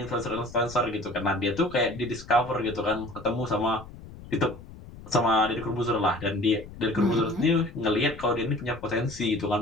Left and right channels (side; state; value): left; noise; rumble, 16 dB below the sound